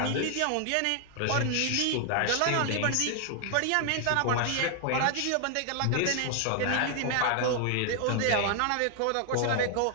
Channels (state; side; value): different; both; correlation 0.00